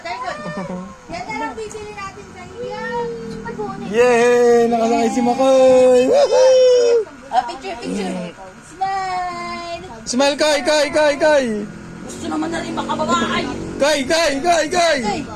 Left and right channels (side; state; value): both; identical; correlation 1.00